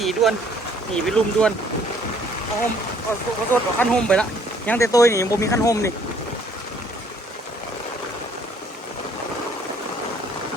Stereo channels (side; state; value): both; normal; correlation 0.61